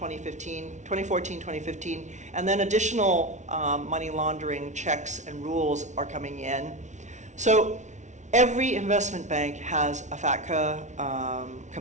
2015, and then additional money laundering checks and rules are coming in. So every investment bank has a FATCA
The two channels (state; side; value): late; left; 0.35 ms